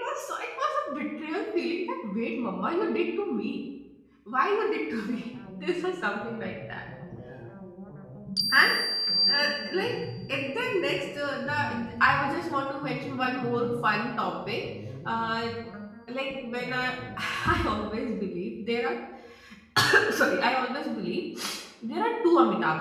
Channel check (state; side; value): identical; both; correlation 1.00